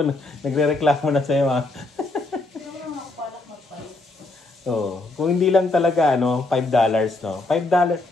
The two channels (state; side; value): quieter; right; 3.0 dB